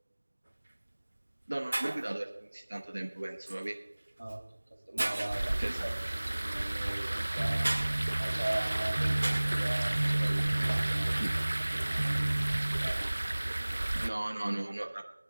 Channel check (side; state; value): both; inverted; correlation -1.00